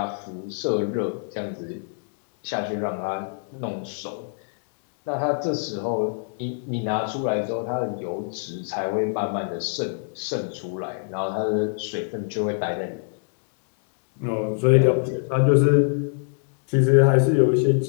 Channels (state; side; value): silent; right; digital silence